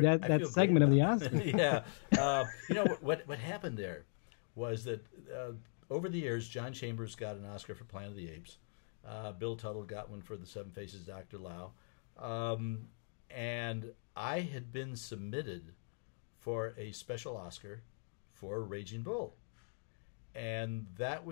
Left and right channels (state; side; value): silent; right; digital silence